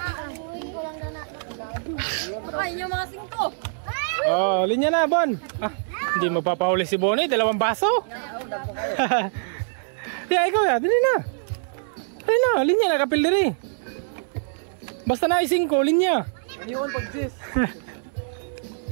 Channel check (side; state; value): left; silent; digital silence